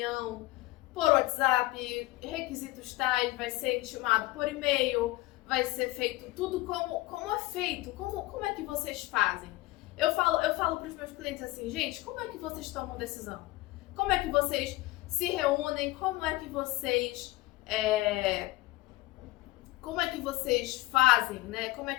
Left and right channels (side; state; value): right; quieter; 19.1 dB